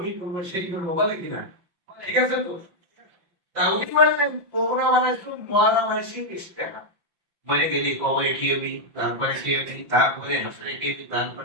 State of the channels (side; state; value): left; late; 5.8 ms